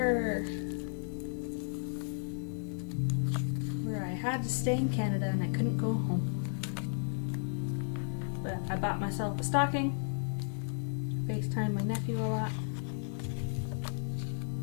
where I had to stay in Canada and I couldn't go home. But I bought myself a stocking. FaceTime my nephew a lot.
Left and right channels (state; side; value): silent; right; digital silence